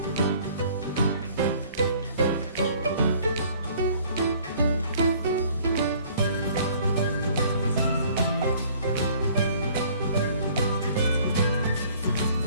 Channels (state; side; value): inverted; both; correlation -0.56